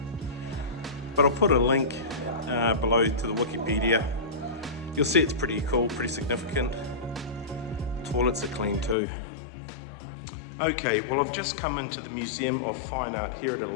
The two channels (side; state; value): right; drops out; at 9.0 s